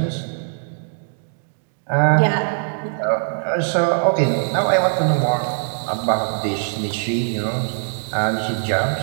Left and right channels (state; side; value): silent; left; digital silence